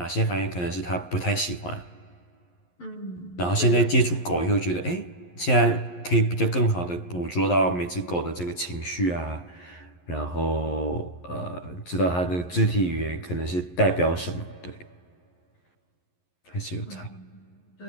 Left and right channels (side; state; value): right; late; 11 ms